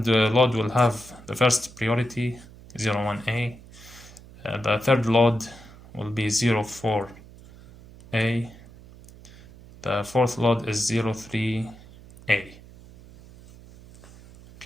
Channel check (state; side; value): noise; right; hum, 20 dB below the sound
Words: load will have the first priority 01A, the third load will be 04A, the fourth load is 03A.